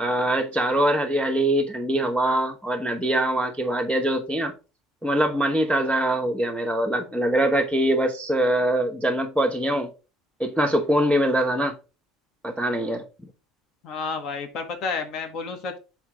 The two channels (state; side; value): normal; both; correlation 0.70